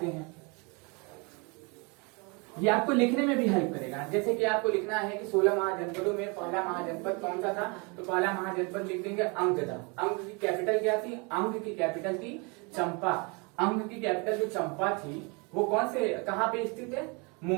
हैं, ये आपको लिखने में भी हेल्प करेगा। जैसे कि आपको लिखना है कि 16 महाजनपदों में पहला महाजनपद कौन सा था, तो पहला महाजनपद लिख देंगे अंग था। अंग की कैपिटल क्या थी, अंग की कैपिटल थी चंपा। अंग की कैपिटल जो चंपा थी वो कौन से, कहाँ पे स्थित है,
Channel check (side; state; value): left; quieter; 31.0 dB